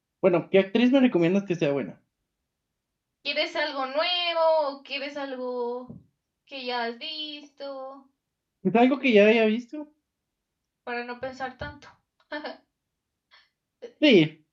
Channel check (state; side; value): identical; both; correlation 1.00